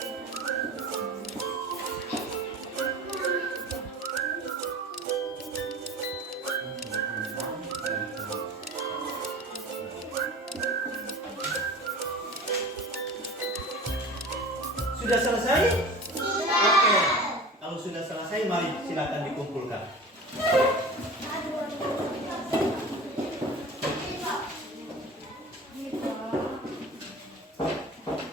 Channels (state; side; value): normal; both; correlation 0.37